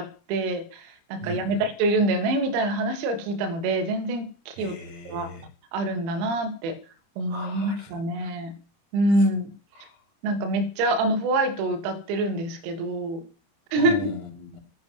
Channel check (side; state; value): left; late; 30 ms